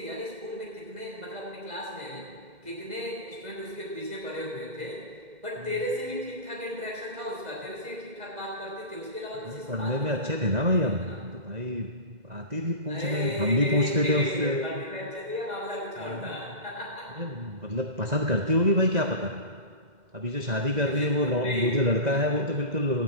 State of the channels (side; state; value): left; late; 2.0 ms